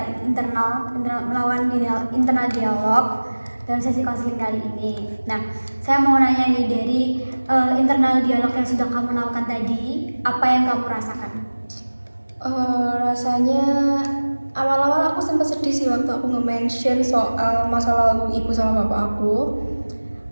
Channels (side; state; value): both; inverted; correlation -1.00